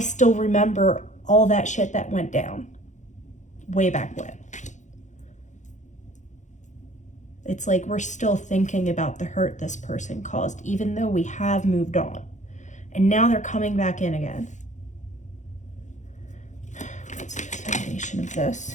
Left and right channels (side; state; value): right; late; 0.35 ms